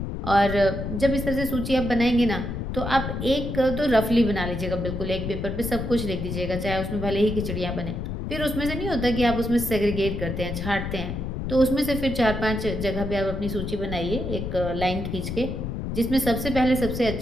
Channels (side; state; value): left; noise; rumble, 4 dB below the sound